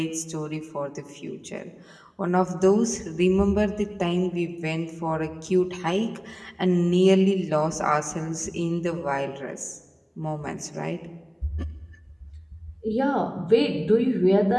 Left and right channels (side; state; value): both; identical; correlation 1.00